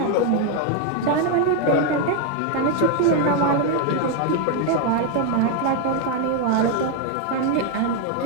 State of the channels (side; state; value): both; different; correlation 0.00